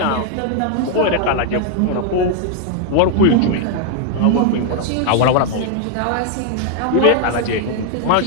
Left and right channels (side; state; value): both; different; correlation 0.00